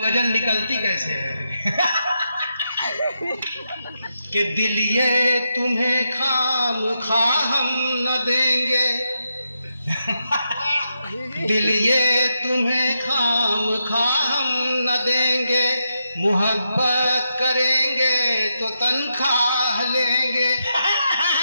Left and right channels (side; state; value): both; inverted; correlation -0.84